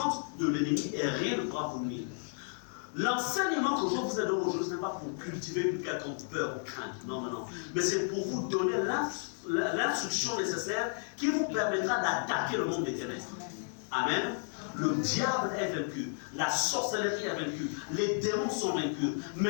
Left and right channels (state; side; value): silent; right; 56 dB below the other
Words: de l'ennemi, et rien ne pourra vous nuire. L'enseignement que je vous ai donné aujourd'hui, ce n'est pas pour cultiver une quelconque peur ou crainte. Non, non, non. Mais c'est pour vous donner l'instruction nécessaire qui vous permettra d'attaquer le monde des ténèbres. Amen. Le diable est vaincu, la sorcellerie est vaincue, les démons sont vaincus.